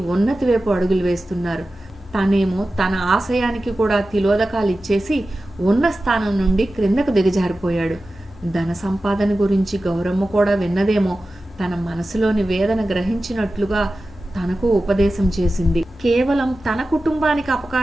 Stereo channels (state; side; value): normal; both; correlation 0.94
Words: ఉన్నతి వైపు అడుగులు వేస్తున్నారు. తనేమో తన ఆశయానికి కూడా తిలోదకాలు ఇచ్చేసి ఉన్న స్థానం నుండి క్రిందకు దిగజారిపోయాడు. ధన సంపాదన గురించి గౌరమ్మ కూడా విన్నదేమో. తన మనసులోని వేదన గ్రహించినట్లుగా తనకు ఉపదేశం చేసింది. కేవలం తన కుటుంబానికి